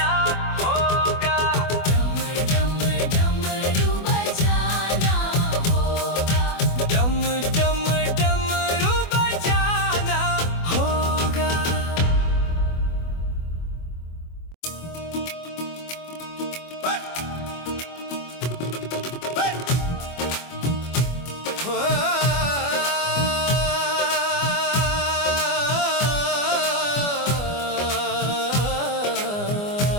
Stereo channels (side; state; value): right; late; 24 ms